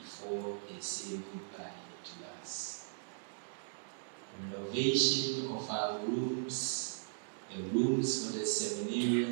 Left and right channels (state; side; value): silent; left; digital silence